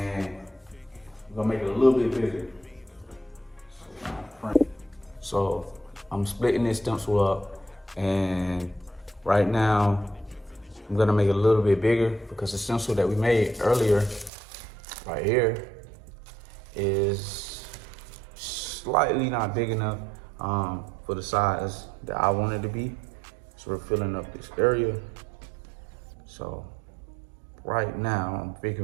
I'm gonna make it a little bit bigger. So I'm splitting this stencil up, and right now I'm gonna make it a little bit bigger because the stencil that we made earlier, right here, is slightly not big enough for the size that I want it to be. So we're filling up this area. So right now I'm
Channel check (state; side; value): drops out; left; at 14.3 s